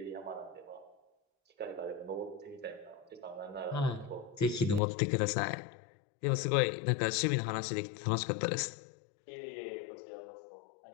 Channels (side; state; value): right; drops out; at 4.8 s